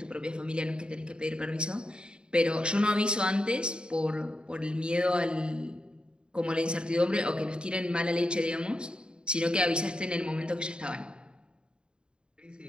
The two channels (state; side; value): late; left; 0.051 ms